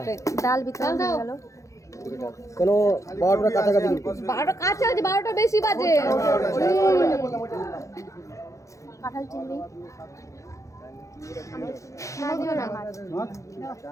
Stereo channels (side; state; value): right; late; 0.15 ms